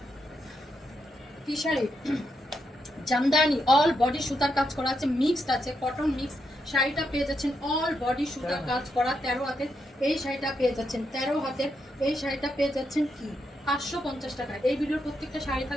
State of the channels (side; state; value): both; normal; correlation 0.81